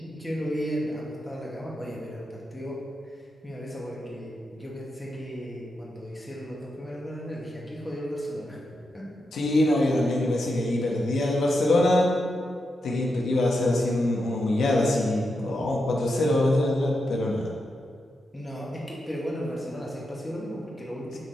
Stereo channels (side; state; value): both; normal; correlation 0.86